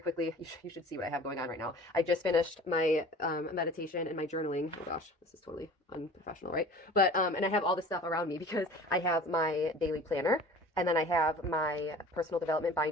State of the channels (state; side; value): normal; both; correlation 0.43